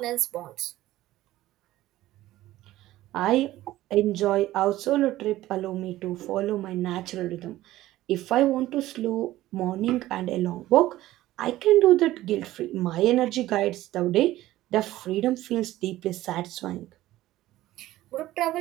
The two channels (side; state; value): left; quieter; 15.6 dB